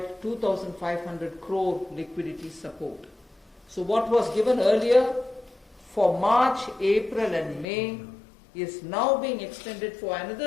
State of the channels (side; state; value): right; drops out; at 7.7 s